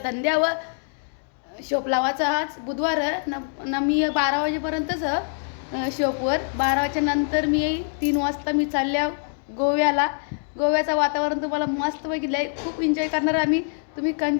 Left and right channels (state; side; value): silent; right; digital silence